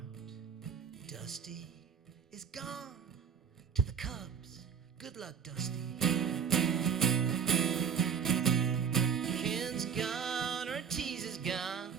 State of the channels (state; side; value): quieter; left; 7.1 dB